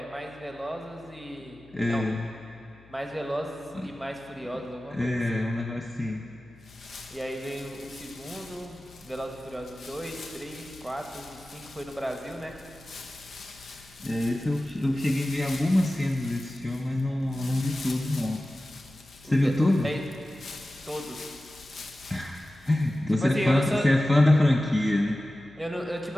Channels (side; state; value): left; noise; hum, 25 dB below the sound